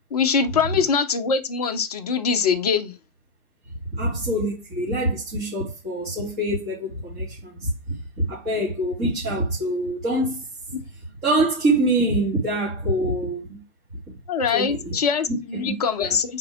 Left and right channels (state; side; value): normal; both; correlation 0.06